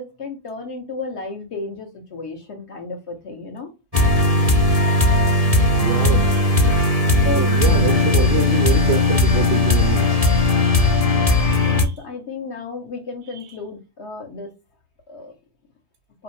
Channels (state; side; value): late; left; 1.7 ms